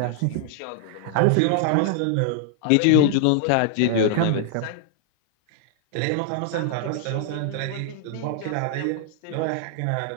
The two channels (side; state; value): both; different; correlation 0.00